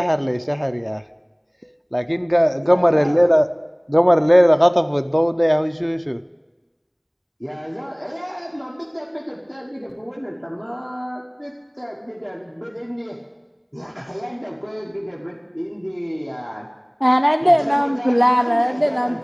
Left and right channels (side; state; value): both; identical; correlation 1.00